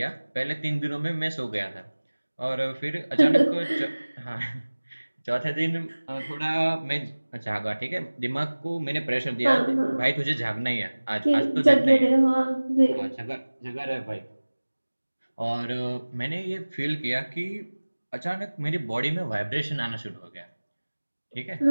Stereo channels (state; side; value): inverted; both; correlation -1.00